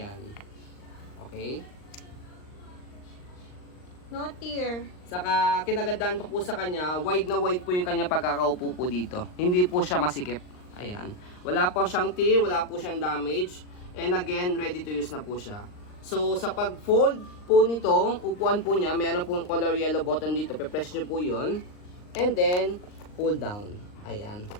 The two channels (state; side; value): late; right; 39 ms